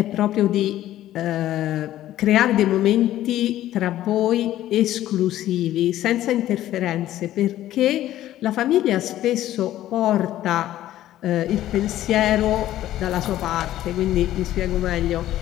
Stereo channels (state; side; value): quieter; right; 13.5 dB